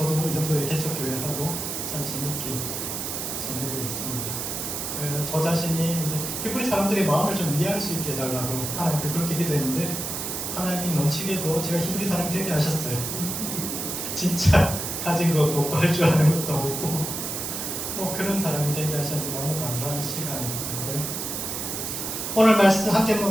이 정도의 개척교회하고 참 재밌게 지내고 있습니다. 저 자신이 이제 히브리 사람들의 마음을 좀 이해할 수 있게 해달라고 하나님께 그렇게 기도했는데 하나님이 넘치게도 제가 히브리 사람이 되게 하셨어요. 진짜 가진 것도 없고 할 줄 아는 것도 없고 뭐 그런 사람이 되게 하셨는데 너무 감사한 시간이고요. 오늘 말씀 함께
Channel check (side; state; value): right; noise; hiss, 4 dB below the sound